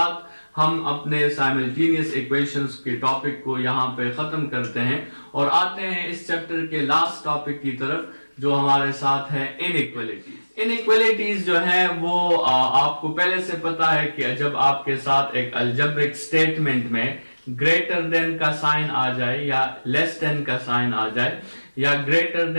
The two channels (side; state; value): both; inverted; correlation -1.00